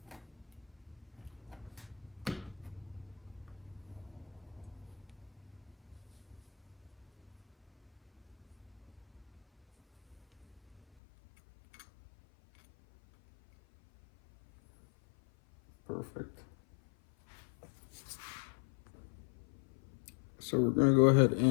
Perfect. So we're gonna go ahead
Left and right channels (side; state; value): right; drops out; at 10.8 s